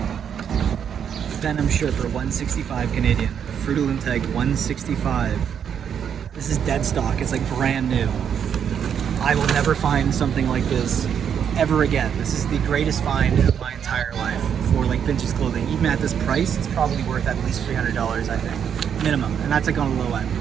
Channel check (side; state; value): left; quieter; 8.1 dB